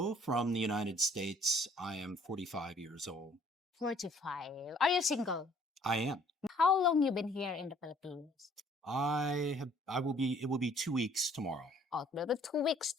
from the United States. I am 45 years old. 45. Are you single? I am. How long you been here in the Philippines? It will be 2 weeks tomorrow. Oh, maybe 2 weeks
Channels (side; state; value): both; normal; correlation 0.59